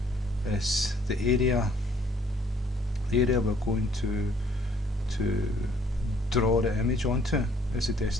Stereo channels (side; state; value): both; normal; correlation 0.62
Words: is the area we're going to draw the image onto is the